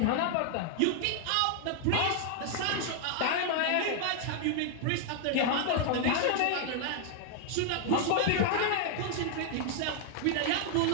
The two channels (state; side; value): different; both; correlation 0.00